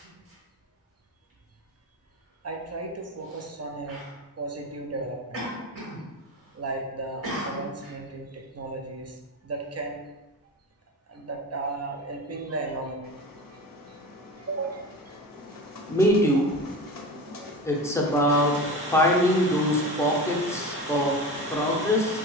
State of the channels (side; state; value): both; normal; correlation 0.29